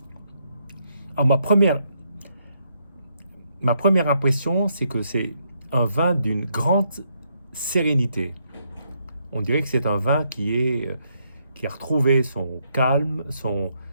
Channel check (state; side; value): inverted; both; correlation -0.76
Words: Alors, ma première impression, c'est que c'est un vin d'une grande sérénité. On dirait que c'est un vin qui a retrouvé son calme,